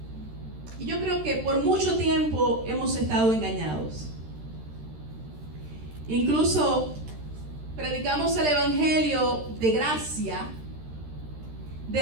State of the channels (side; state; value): left; late; 13 ms